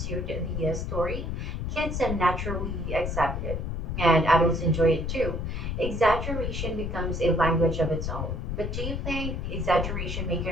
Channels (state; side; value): noise; left; rumble, 3 dB below the sound